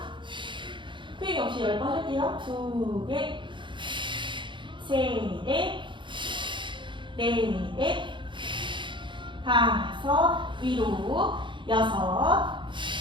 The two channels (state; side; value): late; left; 0.23 ms